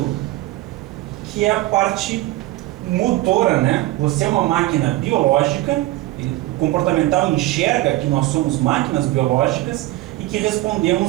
que é a parte motora, né? Você é uma máquina biológica, o comportamental enxerga que nós somos máquinas biológicas e que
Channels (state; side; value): quieter; left; 17.9 dB